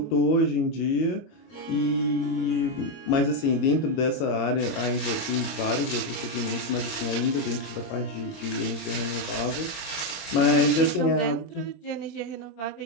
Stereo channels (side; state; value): right; late; 22 ms